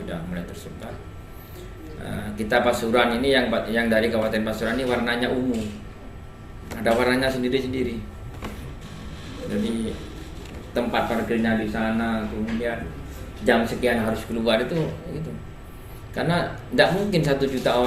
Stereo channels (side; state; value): both; identical; correlation 1.00